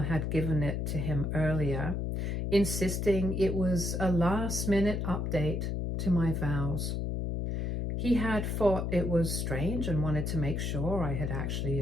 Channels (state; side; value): noise; left; hum, 1 dB below the sound